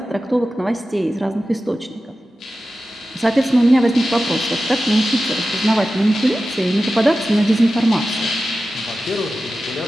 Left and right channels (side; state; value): both; normal; correlation 0.94